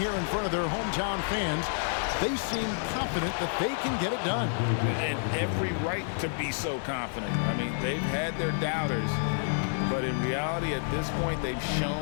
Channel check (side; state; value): right; silent; digital silence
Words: in front of their hometown fans, they seem confident that they can get it done. And every right to be so confident. I mean, they've had their doubters, but in reality, at this point, they've